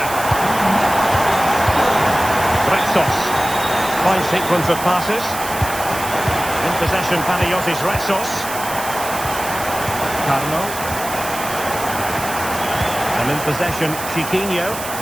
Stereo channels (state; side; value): noise; right; hiss, 9 dB below the sound